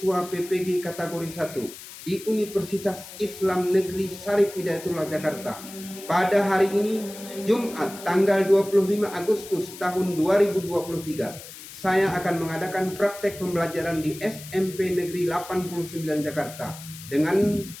PPG kategori 1 di Universitas Islam Negeri Syarif Hidayatullah Jakarta. Pada hari ini, Jumat tanggal 25 Agustus tahun 2023, saya akan mengadakan praktek pembelajaran di SMP Negeri 89 Jakarta dengan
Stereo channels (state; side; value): noise; left; hiss, 15 dB below the sound